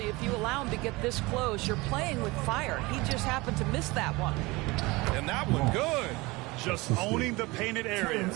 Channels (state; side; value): quieter; left; 23.0 dB